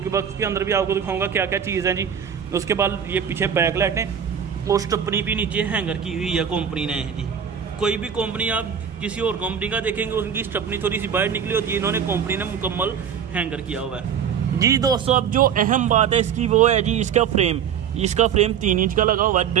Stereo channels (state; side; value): quieter; left; 8.0 dB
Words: बॉक्स के अंदर भी आपको दिखाऊंगा क्या क्या चीज़ है जी। उसके बाद ये पीछे बैक लाइट है और स्टपनी भी नीचे हैंगर की हुई है कंपनी ने जी। कोई भी कंपनी आप किसी और कंपनी का देखेंगे उनकी स्टपनी थोड़ी सी बाहर निकली होती है, इन्होंने कंपनी ने मुकम्मल हैंगर किया हुआ है जी। दोस्तों अब जो अहम बात है इसकी वो है जी इसका फ्रेम। इसका फ्रेम 3 इंच का लगा हुआ है,